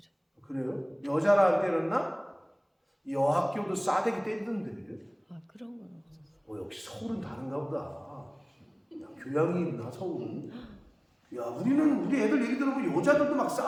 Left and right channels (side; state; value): both; identical; correlation 1.00